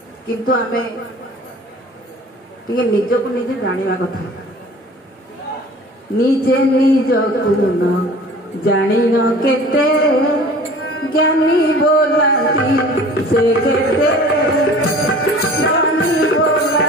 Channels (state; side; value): normal; both; correlation 0.45